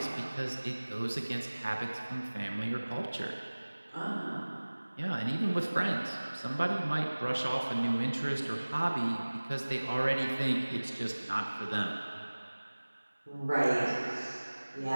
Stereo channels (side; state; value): both; inverted; correlation -1.00